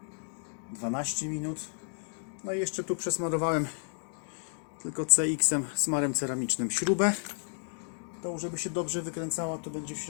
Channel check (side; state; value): right; silent; digital silence